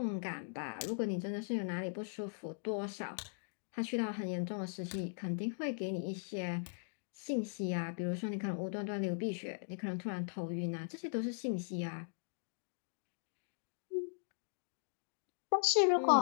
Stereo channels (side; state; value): right; silent; digital silence